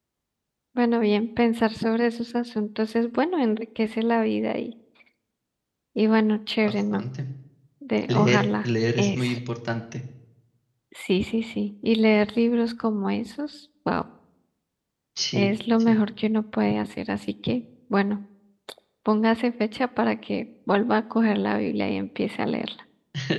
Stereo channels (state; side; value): identical; both; correlation 1.00